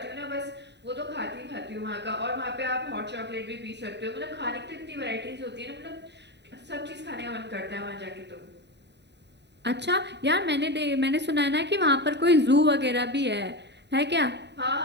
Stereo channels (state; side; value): late; left; 0.50 ms